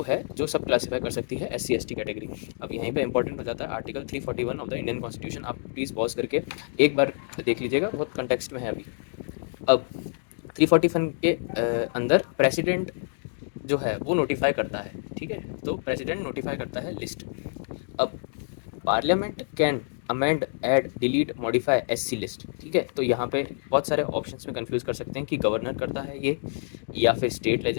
है जो सब क्लासीफाई कर सकती है SC ST कैटेगरी। अब यहीं पे इंपॉर्टेंट हो जाता है article 341 of the Indian constitution. आप प्लीज़ पॉज करके एक बार देख लीजिएगा, बहुत कंटेक्स्ट में है अभी। अब 341 के अंदर प्रेसिडेंट जो है वो नोटिफाई करता है, ठीक है। तो प्रेसिडेंट नोटिफाई करता है लिस्ट। अब parliament can amend, add, delete, modify SC list, ठीक है। तो यहाँ पे बहुत सारे ऑप्शंस में कंफ्यूज कर सकते हैं कि गवर्नर करता है ये, या फिर स्टेट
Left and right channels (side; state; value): right; silent; digital silence